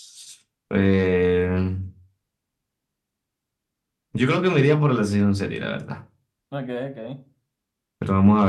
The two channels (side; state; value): both; identical; correlation 1.00